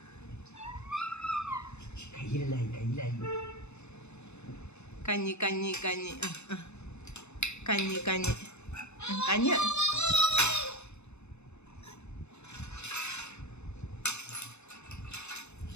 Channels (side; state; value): right; late; 0.81 ms